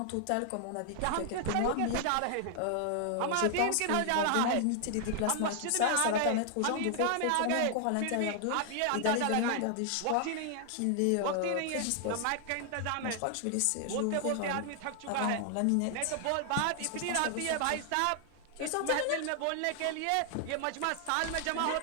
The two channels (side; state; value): both; different; correlation 0.00